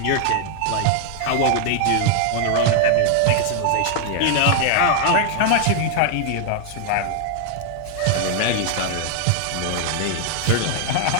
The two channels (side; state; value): both; different; correlation 0.00